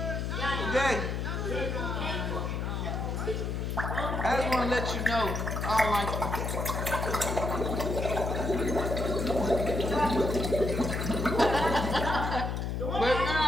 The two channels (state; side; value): noise; left; hum, 2 dB below the sound